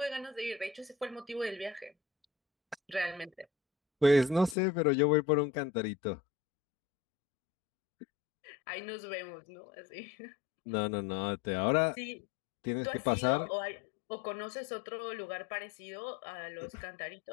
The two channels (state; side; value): drops out; right; at 4.5 s